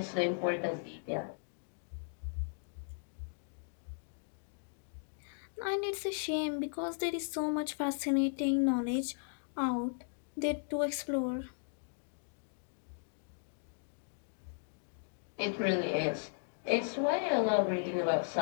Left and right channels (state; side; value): silent; right; digital silence